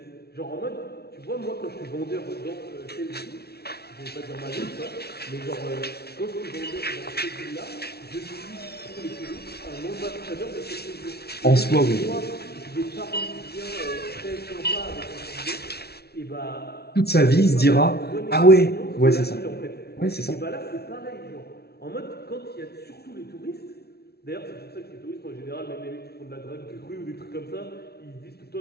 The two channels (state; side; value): late; right; 0.46 ms